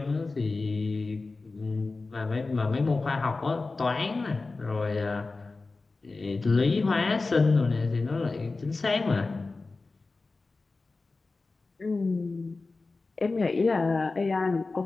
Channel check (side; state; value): right; quieter; 3.7 dB